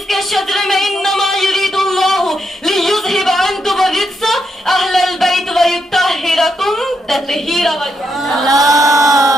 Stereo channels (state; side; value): normal; both; correlation 0.81